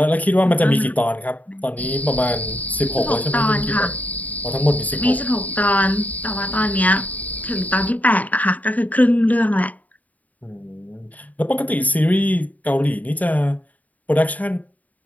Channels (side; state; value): right; late; 0.074 ms